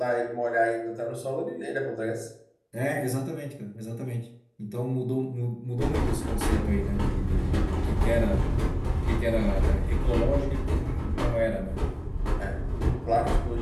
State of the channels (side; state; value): both; identical; correlation 1.00